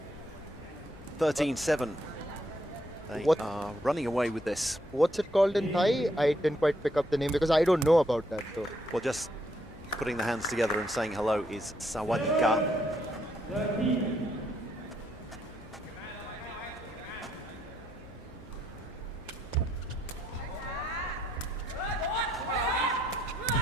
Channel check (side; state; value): both; normal; correlation 0.73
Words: 13-7. They are running away with this. What's it called in Thai? I didn't quite pick up the name because I don't know about that though. Well, just putting the hands together and saying hello is Sawadika.